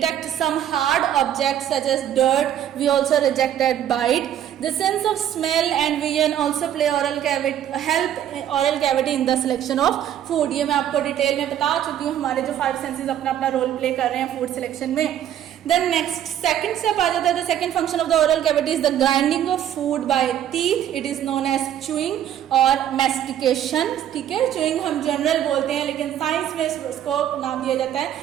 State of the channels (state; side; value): quieter; left; 10.7 dB